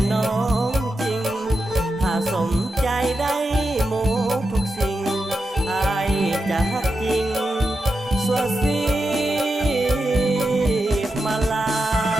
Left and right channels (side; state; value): both; normal; correlation 0.88